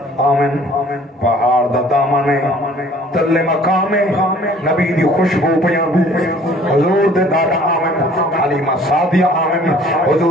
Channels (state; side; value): normal; both; correlation 0.53